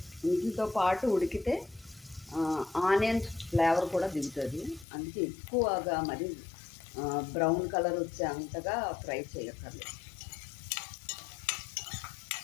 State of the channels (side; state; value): right; drops out; at 4.9 s